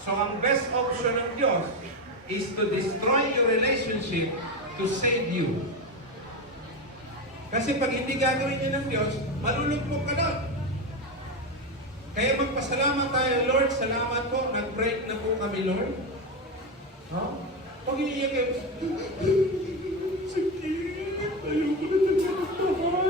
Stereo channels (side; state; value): both; normal; correlation 0.15